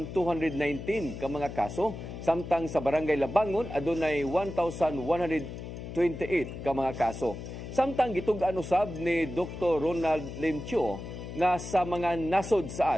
ka mga kaso, samtang sa Barangay Labangon adunay 1,128 ka mga kaso. Samtang gitug-an usab ni Dr. Ronald Limcho nga sa mga nasod sa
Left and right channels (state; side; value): noise; left; hum, 9 dB below the sound